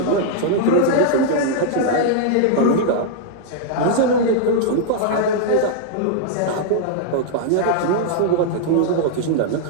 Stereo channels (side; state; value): both; different; correlation -0.01